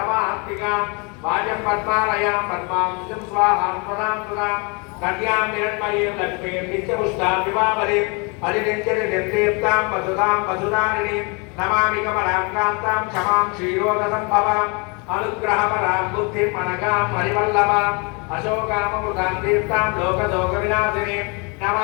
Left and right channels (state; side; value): quieter; right; 31.9 dB